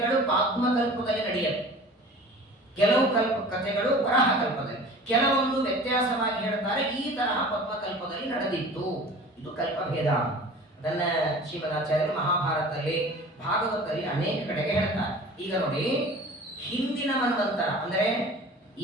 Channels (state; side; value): normal; both; correlation 0.42